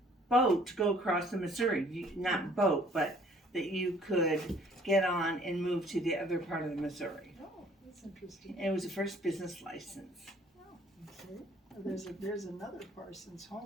boat to go across the Missouri. Not boat, but that you could get on and move to the other part of the Missouri. Oh, that's interesting. And it was the first business license. Okay. There's another Parsons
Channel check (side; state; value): both; normal; correlation 0.58